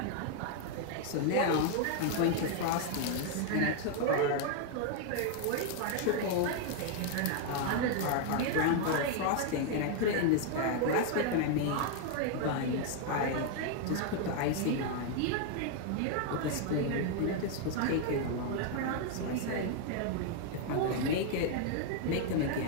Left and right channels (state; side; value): different; both; correlation 0.00